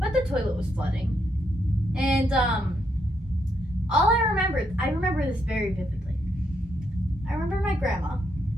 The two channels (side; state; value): both; normal; correlation 0.77